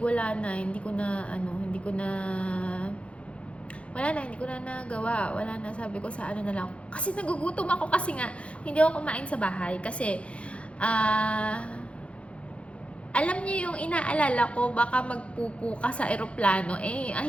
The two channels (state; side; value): late; right; 0.061 ms